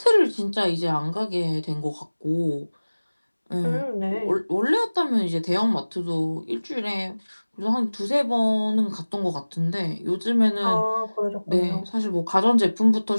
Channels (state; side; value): inverted; both; correlation -1.00